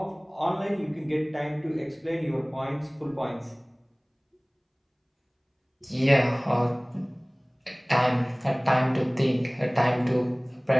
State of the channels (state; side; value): identical; both; correlation 1.00